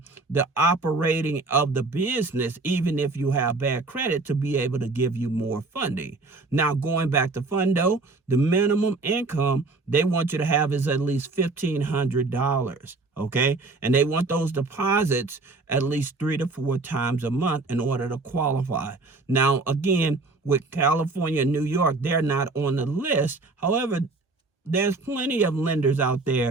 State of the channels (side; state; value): left; quieter; 3.6 dB